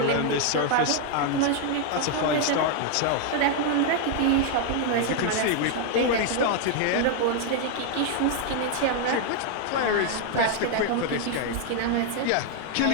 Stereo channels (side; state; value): both; different; correlation 0.00